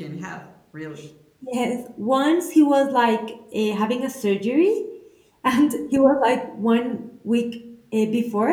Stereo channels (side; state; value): both; identical; correlation 1.00